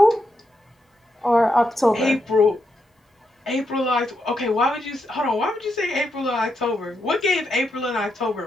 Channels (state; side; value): normal; both; correlation 0.83